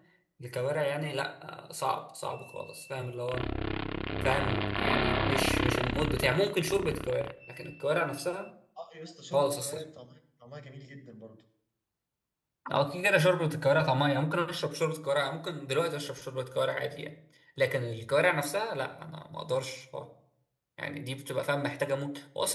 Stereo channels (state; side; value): identical; both; correlation 1.00